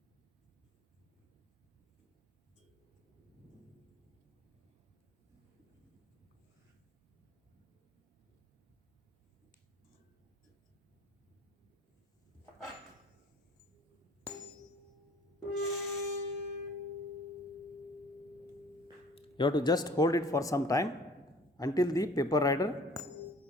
You have to just hold it for some time until the paper rider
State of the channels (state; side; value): normal; both; correlation 0.51